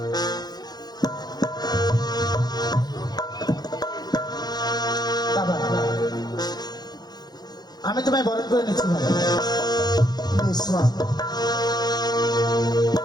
বাবা, আমি তোমায় বরণ করে নিচ্ছি বাবা।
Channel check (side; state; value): right; late; 0.19 ms